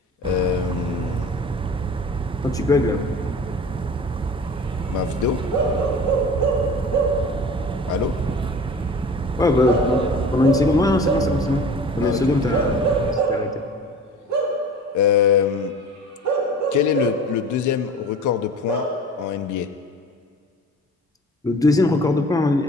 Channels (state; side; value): normal; both; correlation 0.41